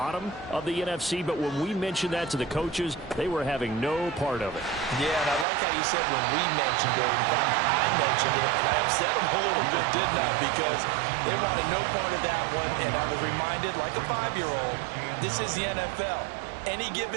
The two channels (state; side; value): drops out; left; at 5.5 s